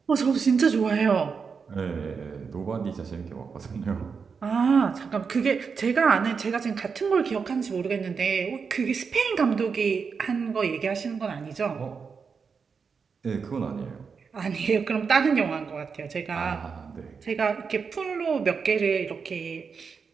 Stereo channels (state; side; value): quieter; left; 5.6 dB